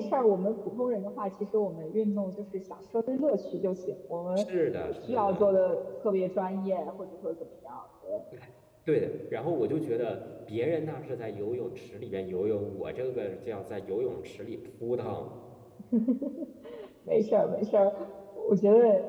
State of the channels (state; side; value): identical; both; correlation 1.00